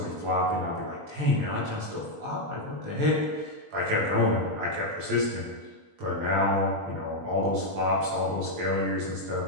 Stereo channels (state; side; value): late; left; 20 ms